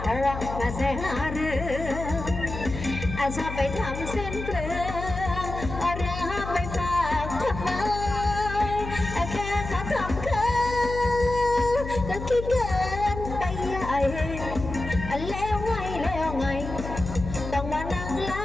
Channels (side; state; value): left; noise; hum, 7 dB below the sound